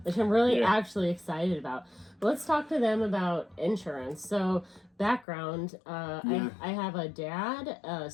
which I'm really actually excited about. But let's talk to them about insurance. So background, I have a dad, a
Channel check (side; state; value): right; drops out; at 5.2 s